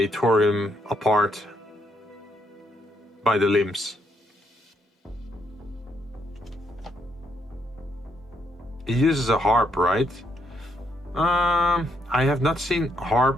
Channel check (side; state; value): both; normal; correlation 0.74